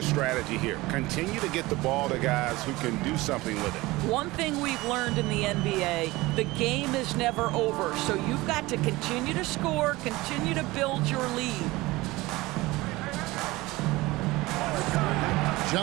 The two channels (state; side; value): quieter; left; 20.4 dB